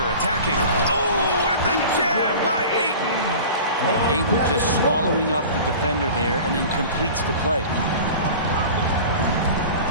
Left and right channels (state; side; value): inverted; both; correlation -0.38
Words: attacking. Oh, and the jam by Ayton. Ayton just swallowing up the defender there and then completes the play.